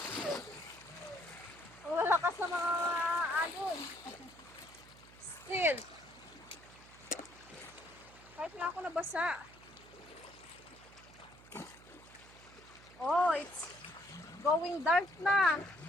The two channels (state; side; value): noise; right; hum, 21 dB below the sound